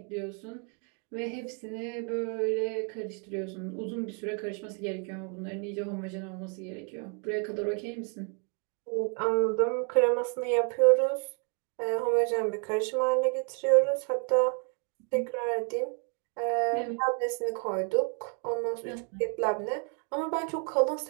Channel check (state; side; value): quieter; left; 38.4 dB